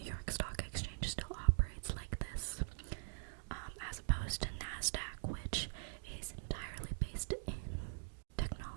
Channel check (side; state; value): left; silent; digital silence